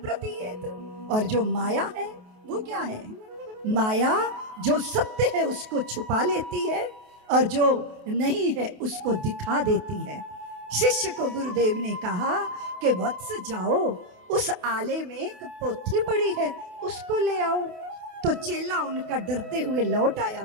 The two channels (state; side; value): late; left; 28 ms